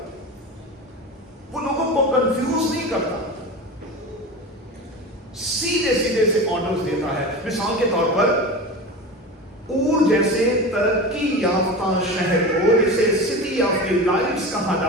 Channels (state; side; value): normal; both; correlation 0.28